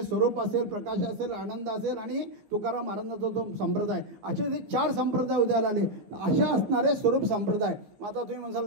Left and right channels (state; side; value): late; left; 14 ms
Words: स्वरूप असेल, प्रकाश असेल, आनंद असेल आणि तुकाराम महाराजांचा जो संप्रदाय, असे जे 4 संप्रदाय उदयाला आले. अशा असणारे स्वरूप संप्रदाय. मग आता तुम्ही